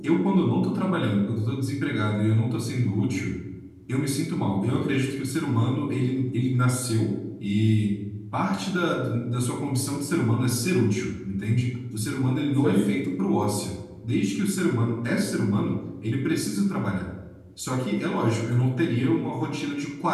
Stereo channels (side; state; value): both; identical; correlation 1.00